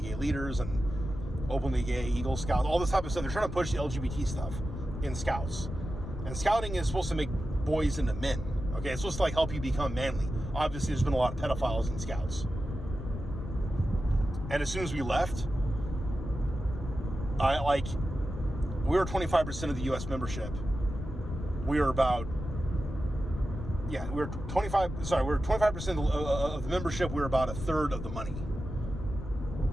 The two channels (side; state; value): left; noise; rumble, 7 dB below the sound